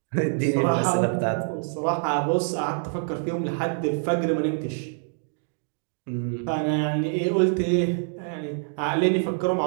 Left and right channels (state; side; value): silent; left; 61 dB below the other